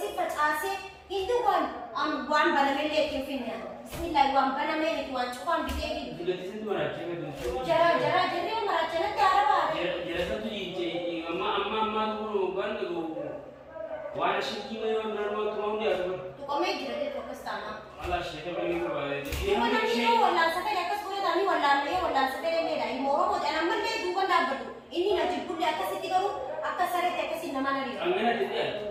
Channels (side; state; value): both; identical; correlation 1.00